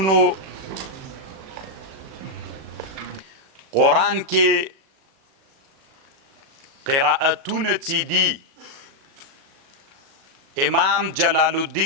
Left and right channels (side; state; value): left; late; 37 ms